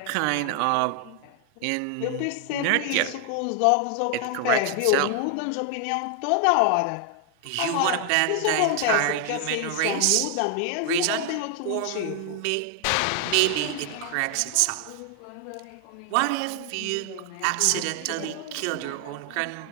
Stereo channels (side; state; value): both; different; correlation 0.00